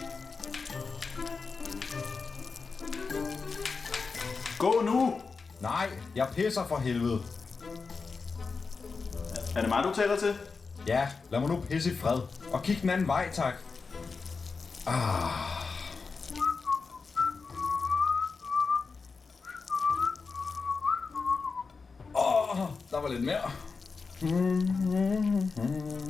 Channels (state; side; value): quieter; right; 4.7 dB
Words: Gå nu! Nej, jeg pisser for helvede. Er det mig, du taler til? Ja, lad mig nu pisse i fred. Og kig den anden vej, tak. Der var lidt mere.